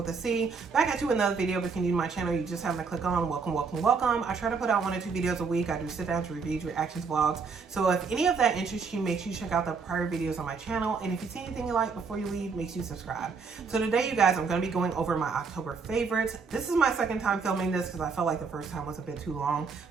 a C. Back at you with another video. If you're new to my channel, you just happen to click on welcome. I try to put out 1 or 2 videos a week. I do sit downs, reviews, reactions, vlogs. So if any of that interests you, make sure you check out the prior videos on my channel. And if you see anything you like before you leave, make sure you subscribe. So today, you guys, I'm going to be going over my October favorites. This is my second time filming this because I felt like the first time was a bit too long.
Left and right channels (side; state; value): left; quieter; 5.1 dB